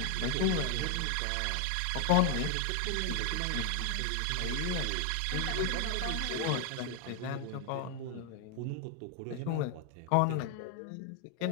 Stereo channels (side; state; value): both; different; correlation 0.00